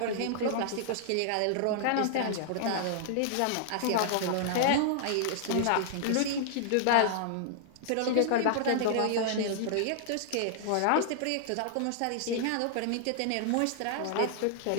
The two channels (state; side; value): different; both; correlation -0.01